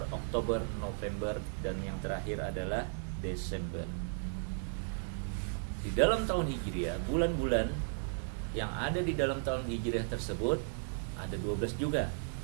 Oktober, November, dan yang terakhir adalah Desember. Di dalam tahun Hijriyah, bulan-bulan yang ada di dalam tahun Hijriah tersebut ada 12 juga,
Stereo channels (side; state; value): left; silent; digital silence